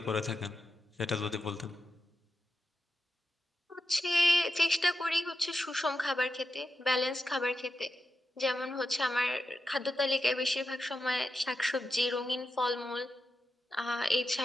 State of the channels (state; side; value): normal; both; correlation 0.89